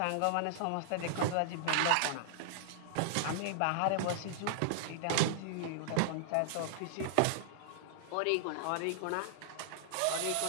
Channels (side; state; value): both; different; correlation -0.01